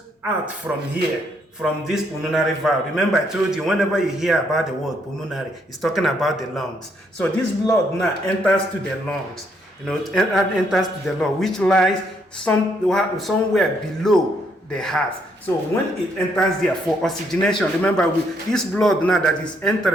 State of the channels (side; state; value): both; normal; correlation 0.72